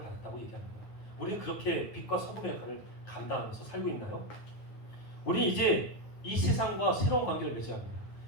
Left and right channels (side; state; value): right; late; 9.4 ms